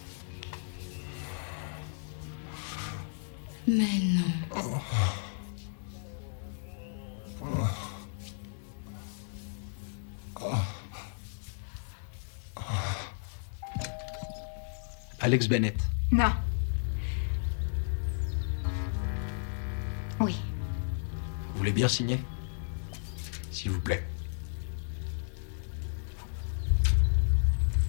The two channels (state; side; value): silent; right; digital silence